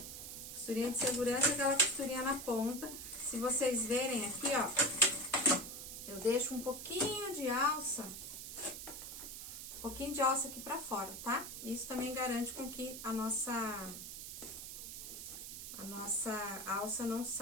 Costurinha de segurança é aquela costurinha na ponta. Se vocês verem aqui, ó, eu deixo um pouquinho de alça. Um pouquinho de alça aqui pra fora, tá? Isso também garante com que a nossa alça não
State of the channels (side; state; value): right; noise; hiss, 9 dB below the sound